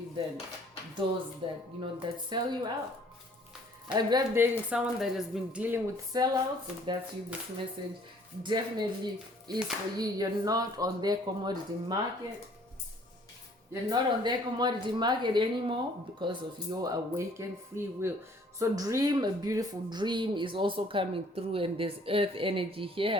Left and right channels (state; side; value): normal; both; correlation 0.58